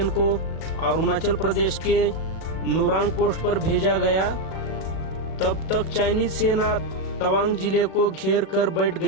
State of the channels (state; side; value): late; right; 37 ms